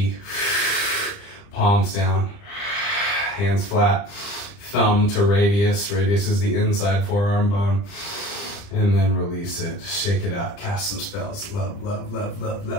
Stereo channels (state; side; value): late; right; 30 ms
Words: palms down, hands flat, thumb to radius. Radius is the inside forearm bone. And then release it, shake it out, cast some spells. Love, love, love, love,